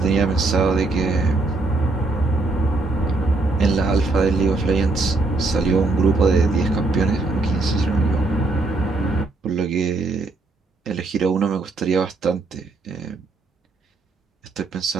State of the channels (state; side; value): quieter; left; 3.3 dB